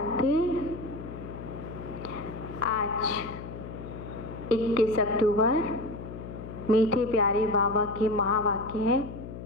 आज 21 अक्टूबर मीठे प्यारे बाबा के महावाक्य है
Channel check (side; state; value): left; noise; hum, 10 dB below the sound